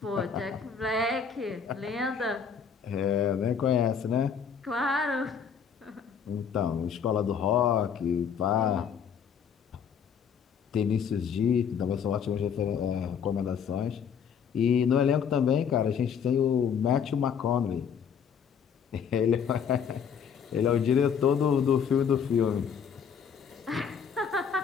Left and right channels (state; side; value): quieter; right; 7.1 dB